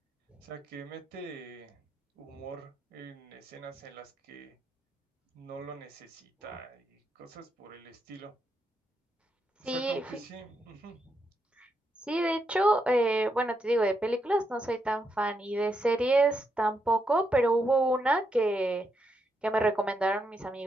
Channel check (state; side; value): normal; both; correlation 0.81